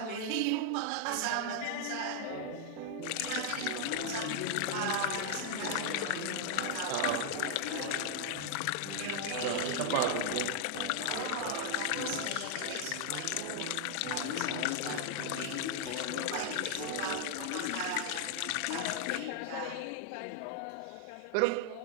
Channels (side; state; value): both; different; correlation 0.00